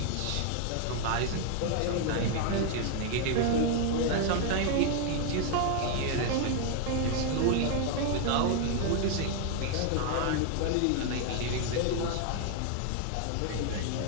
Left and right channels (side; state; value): both; different; correlation 0.00